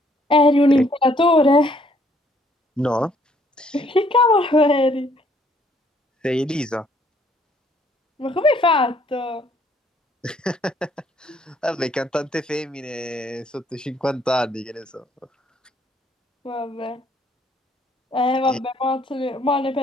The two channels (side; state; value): both; normal; correlation 0.65